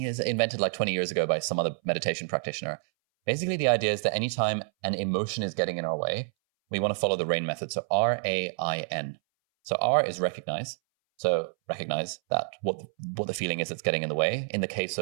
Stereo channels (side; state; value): left; silent; 59 dB below the other